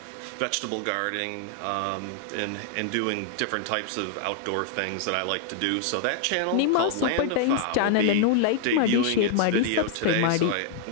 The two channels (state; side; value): different; both; correlation 0.00